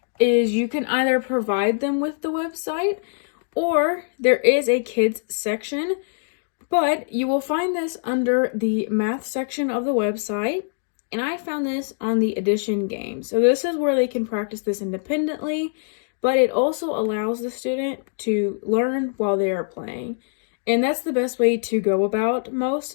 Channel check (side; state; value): right; silent; digital silence